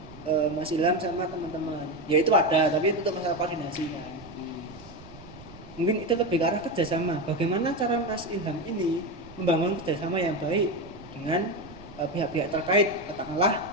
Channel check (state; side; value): noise; right; rumble, 19 dB below the sound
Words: Mas Ilham sama teman-teman. Ya itu ada, tapi itu untuk masalah koordinasi kan. Mungkin itu lebih ke arah kerjasama. Bagaimana cara Mas Ilham ini membangun kerjasama yang baik dengan pihak-pihak terkait, katakanlah